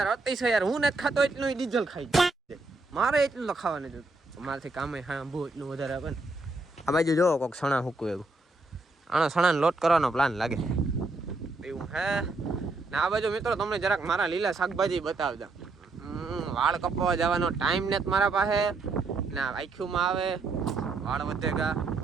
અતિશય યાર. હું નથી ખાતો એટલું ડીઝલ ખાઈ જાય. મારે એટલું તો ખાવા નથી. મારાથી કામે હા બહુ એટલું વધારે આપે ને. આ બાજુ જોવો કોઈક સણા હૂકવું એવું. આનો સણાને લોટ કરવાનો પ્લાન લાગે એવું હે ને. આ બાજુ મિત્રો તમને જરાક મારા લીલા શાકભાજી બતાવતા. વાળ કપાવવા જવાનો ટાઈમ નથી મારા પાસે ને. આખીમાં આવે વાળ વધેગા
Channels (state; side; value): quieter; left; 3.3 dB